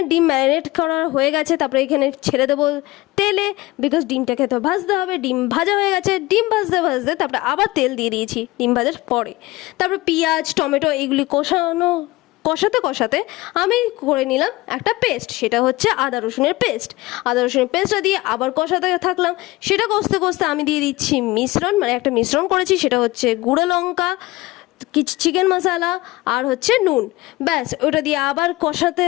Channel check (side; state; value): right; quieter; 19.9 dB